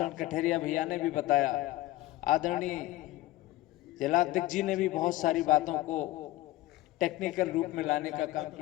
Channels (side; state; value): right; quieter; 17.1 dB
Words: कठेरिया भैया ने भी बताया, आदरणीय जिलाध्यक्ष जी ने भी बहुत सारी बातों को टेक्निकल रूप में लाने का काम